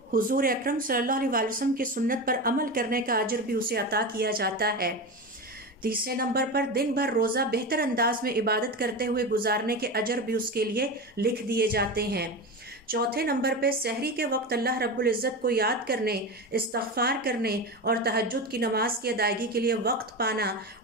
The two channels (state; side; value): normal; both; correlation 0.23